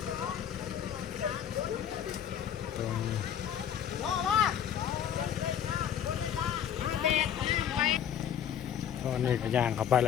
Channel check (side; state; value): right; quieter; 9.3 dB